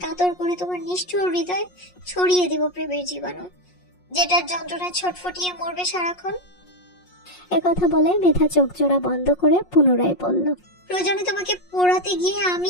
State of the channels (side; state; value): right; late; 5.6 ms